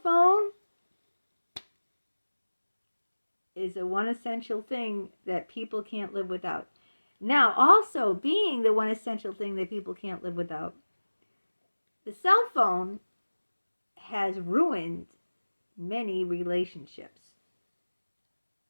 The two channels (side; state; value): both; inverted; correlation -1.00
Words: phone is the one essential thing that people can't live without. Now, also being the one essential thing that people can't live without, the cell phone has ruined many relationships.